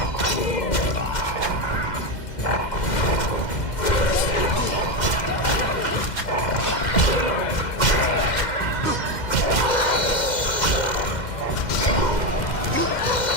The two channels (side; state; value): right; late; 2.1 ms